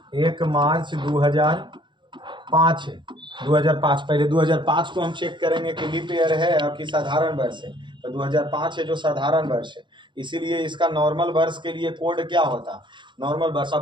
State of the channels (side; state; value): left; late; 0.23 ms